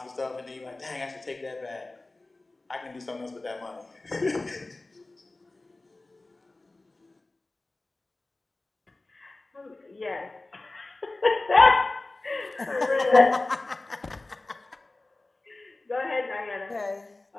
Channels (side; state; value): right; quieter; 3.0 dB